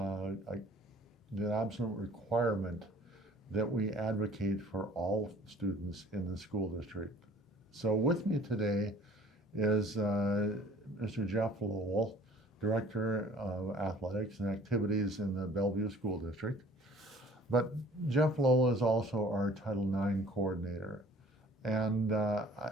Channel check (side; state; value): both; normal; correlation 0.51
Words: requirement that we advocate for all students in the school district. So with me today is Mr. Jeff Lowell, Director of Athletics and Activities in the Bellevue School District. But Jeff Lowell is also our Title IX coordinator. And